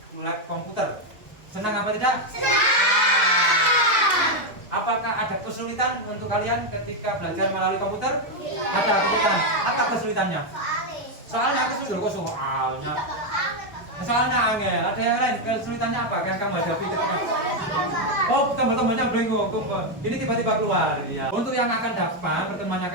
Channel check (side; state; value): both; normal; correlation 0.04